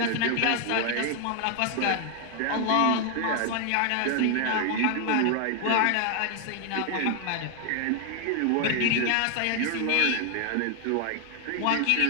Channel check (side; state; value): both; different; correlation 0.00